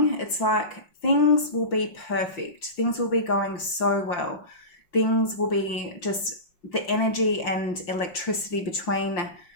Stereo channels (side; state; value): right; late; 5.7 ms